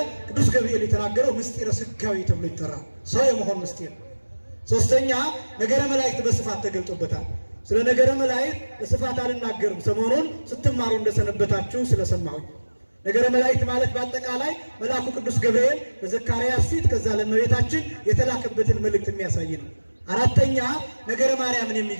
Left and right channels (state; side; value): inverted; both; correlation -1.00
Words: ቅዱስ ገብርኤል የተናገረው ምስጢረ ሥጋዌ ተብሎ ይጠራል። ሰው የመሆን ምስጢር። ሶስተኛ ነገረ መላእክት በስፋት ተገልጦበታል። ስለ ነገረ መላእክት በስፋት አልናገርም፣ ሰሞኑን ስትማሩ እንደሰነበታችሁ ስለሰማሁኝ። ነገረ መላእክት ማለት በአጠቃላይ መልአኩ ቅዱስ ገብርኤል በዘካርያስ ፊት ከዛ ለእመቤታችን የተላከበትን መልእክት የሚያሳይ ነው። አራተኛ ነገረ ማርያምን